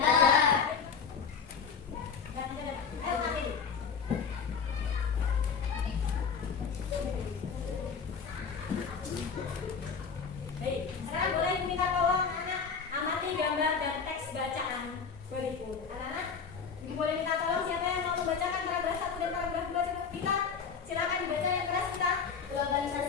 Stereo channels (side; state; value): right; quieter; 6.0 dB